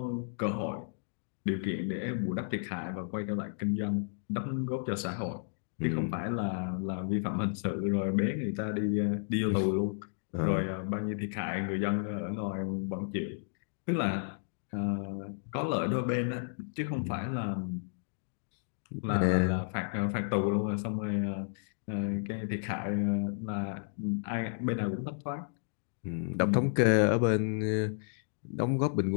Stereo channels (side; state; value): right; silent; digital silence